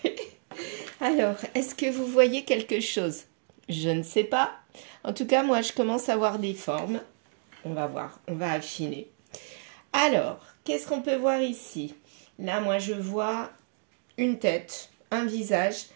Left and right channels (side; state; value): left; silent; 58 dB below the other